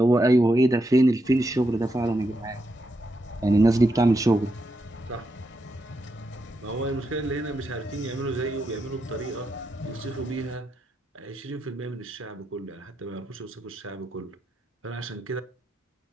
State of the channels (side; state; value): both; normal; correlation 0.83